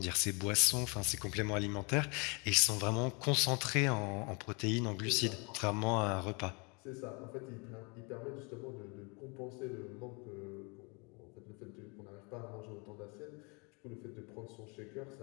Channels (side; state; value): right; quieter; 31.4 dB